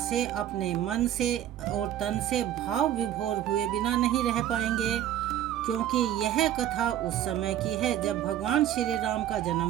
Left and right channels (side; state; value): left; quieter; 11.7 dB